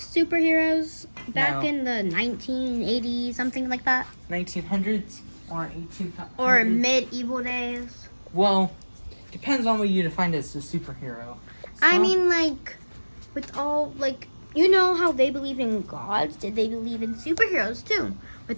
back in the 1980s, something like that? 1900s or 1800s? Or medieval days? Well, depends on what you define as a superhero. I mean, like, with all, like, you know how they believe in gods? Did they believe in superheroes, too?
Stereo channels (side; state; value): both; inverted; correlation -1.00